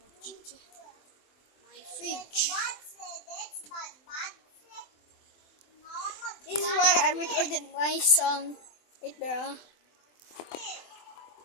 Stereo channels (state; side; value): late; right; 23 ms